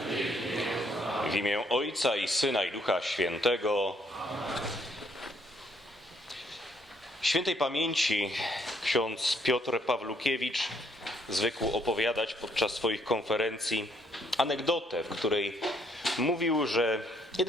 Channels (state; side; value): normal; both; correlation 0.69